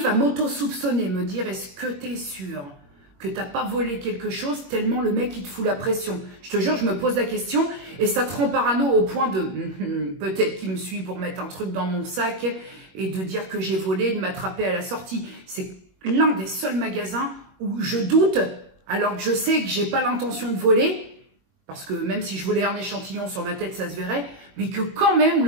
à m'auto-soupçonner, me dire est-ce que tu es sûr que tu n'as pas volé quelque chose tellement le mec il te fout la pression. Je te jure, je me pose la question et ça te rend parano au point de peut-être qu'il me suit pour mettre un truc dans mon sac et de dire que j'ai volé, de m'attraper à la sortie. C'est l'un des seuls magasins où je doute alors que je sais que j'ai pas l'intention de voler. Parce que même si je volais un échantillon sur ma tête, ça se verrait. Mais que quand même,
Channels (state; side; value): late; left; 21 ms